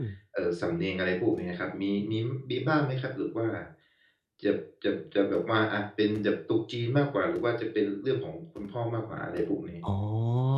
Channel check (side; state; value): both; identical; correlation 1.00